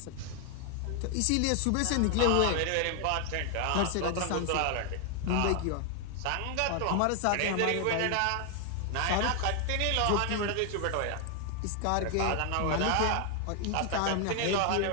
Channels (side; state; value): both; different; correlation 0.00